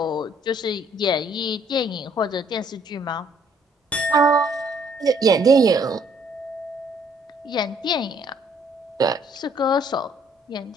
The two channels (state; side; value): normal; both; correlation 0.64